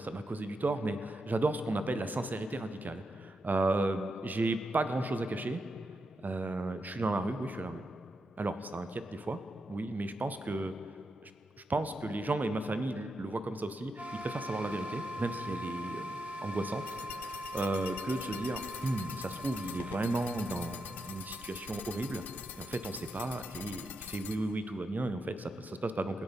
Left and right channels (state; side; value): normal; both; correlation 0.85